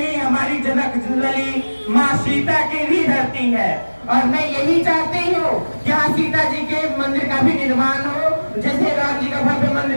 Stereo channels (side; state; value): both; inverted; correlation -1.00